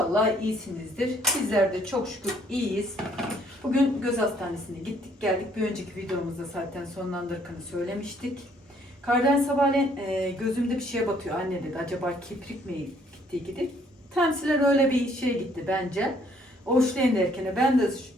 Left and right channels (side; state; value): both; normal; correlation 0.64